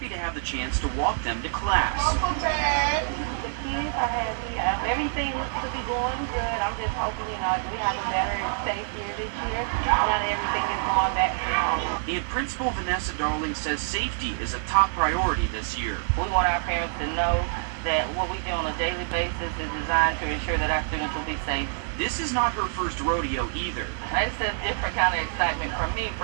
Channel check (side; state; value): left; silent; digital silence